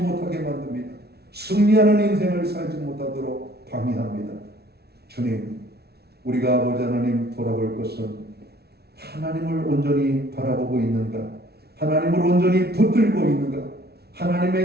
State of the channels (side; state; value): left; late; 0.47 ms